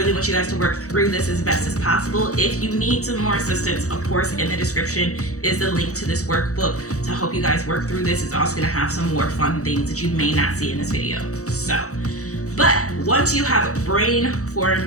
want you guys to work through this as best as possible. If you need some more assistance, of course, in the description is the link to this workbook to help you guys work through this. It's also gonna have some more fun things that you may not see in this video. So, but once you have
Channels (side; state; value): right; late; 0.65 ms